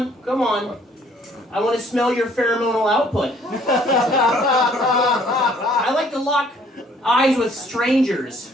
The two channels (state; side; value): normal; both; correlation 0.60